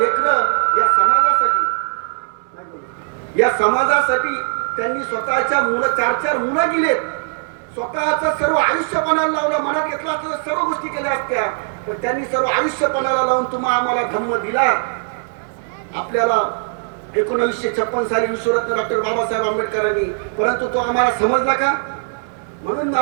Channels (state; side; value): silent; left; digital silence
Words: या समाजासाठी त्यांनी स्वतःच्या 4 मुलं दिलेत. स्वतःचं सर्व आयुष्य पणाला लावलं. मनात घेतलं असतं तर सर्व गोष्टी केल्या असत्या, पण त्यांनी सर्व आयुष्य पणाला लावून आम्हाला धम्म दिला. आपल्याला 1956 साली विश्वरत्न डॉक्टर बाबासाहेब आंबेडकरांनी, परंतु तो आम्हाला समजला का? म्हणून